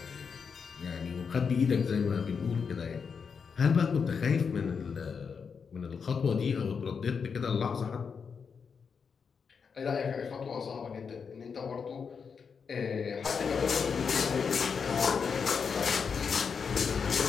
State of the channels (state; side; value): quieter; right; 6.0 dB